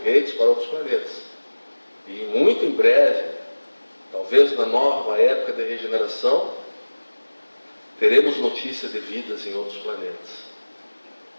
para outros planetas. E muito em breve, talvez na nova época de regeneração, teremos notícia de vidas em outros planetas.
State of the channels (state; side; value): inverted; both; correlation -1.00